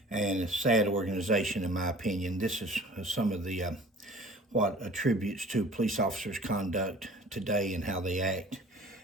And it's a sad organization in my opinion. This is some of the what attributes to police officers' conduct today and how they act.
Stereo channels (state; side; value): normal; both; correlation 0.46